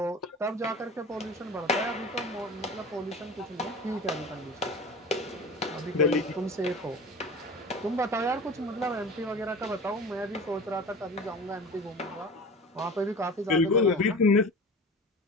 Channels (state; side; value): normal; both; correlation 0.36